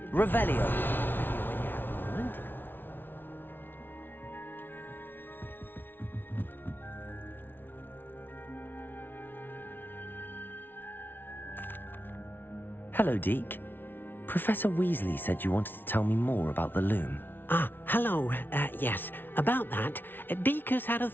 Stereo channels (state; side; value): late; right; 0.098 ms